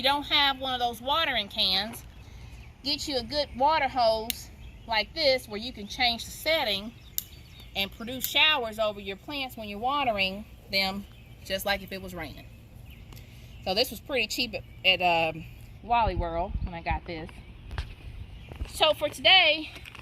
don't have one of those watering cans, get you a good water hose like this where you can change the setting and produce showers over your plants when you're watering them, just like if it was raining. So this was pretty cheap at Wally World when I got this. So for today,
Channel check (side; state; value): both; identical; correlation 1.00